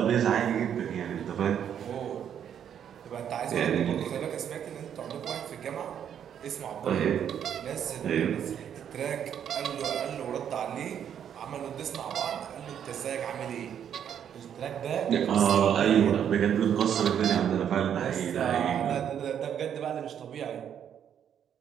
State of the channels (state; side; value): quieter; left; 9.0 dB